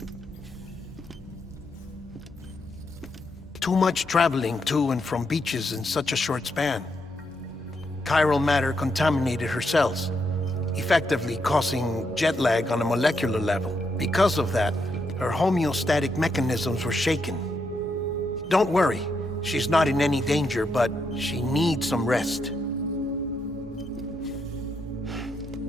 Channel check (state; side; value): normal; both; correlation 0.80